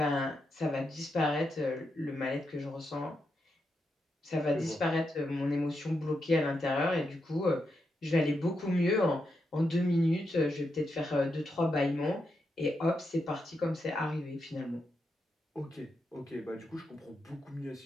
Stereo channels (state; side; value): normal; both; correlation 0.84